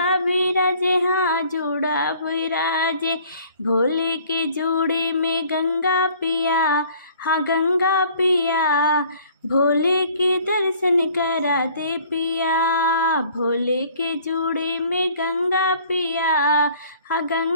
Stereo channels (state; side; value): inverted; both; correlation -0.55